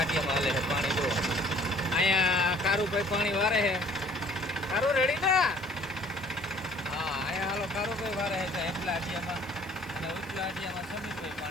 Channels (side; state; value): left; noise; hiss, 24 dB below the sound